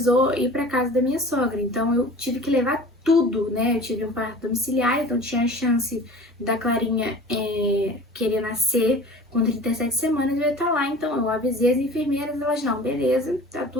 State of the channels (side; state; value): both; normal; correlation 0.42